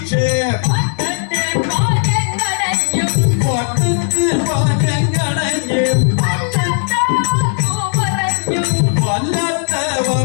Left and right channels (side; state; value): right; silent; digital silence